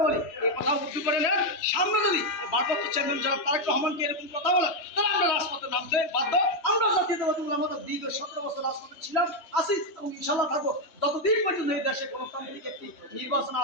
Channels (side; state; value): right; late; 3.2 ms